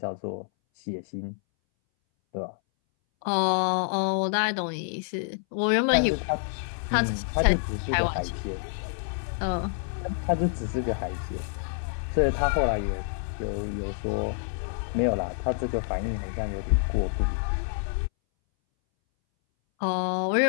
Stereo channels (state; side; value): silent; right; 60 dB below the other